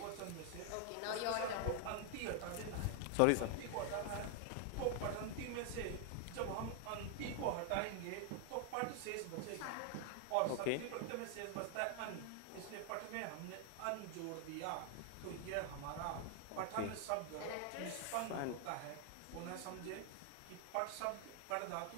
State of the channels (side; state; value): both; different; correlation 0.00